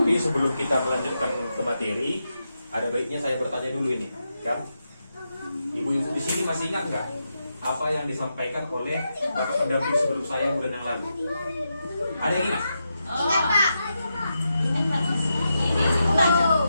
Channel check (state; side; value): inverted; both; correlation -0.86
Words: sebelum kita melanjutkan ke materi, ada baiknya saya bertanya dulu ini, kan? Ibu-ibu di sini masih ingat nggak apa yang disampaikan oleh bapak pendamping sebelum saya bulan yang lalu? Ada yang ingat? Ingat, Pak.